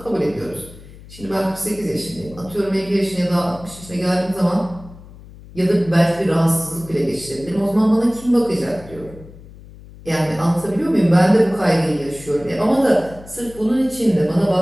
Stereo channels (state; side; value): noise; left; hum, 19 dB below the sound